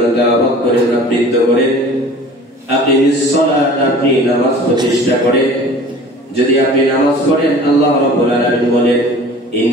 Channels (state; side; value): normal; both; correlation 0.44